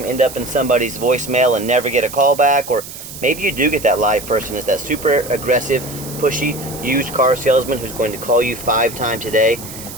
end up in somebody's voicemail and never get a call back? Or maybe you do get that live person, is that super aggressive, pushy, used car salesman who's going to call you 5 times a day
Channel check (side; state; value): right; noise; hiss, 13 dB below the sound